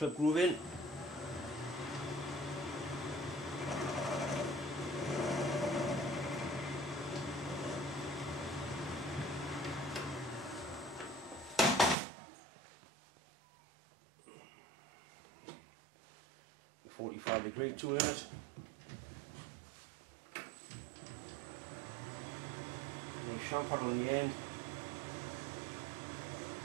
groove in. A 45-degree tool in it. And a chamfer on the end.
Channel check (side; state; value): left; drops out; at 12.0 s